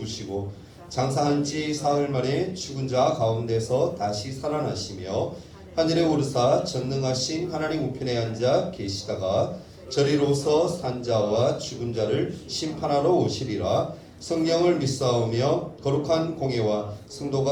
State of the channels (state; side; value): identical; both; correlation 1.00